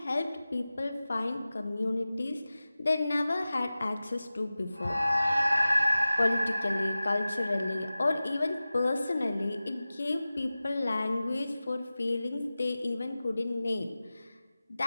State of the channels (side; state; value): both; inverted; correlation -0.96